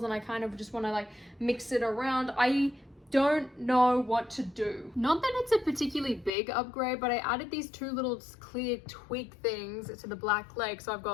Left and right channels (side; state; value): right; drops out; at 6.3 s